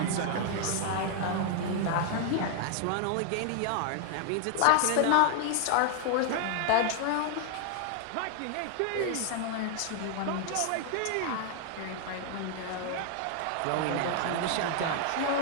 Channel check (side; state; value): both; different; correlation 0.00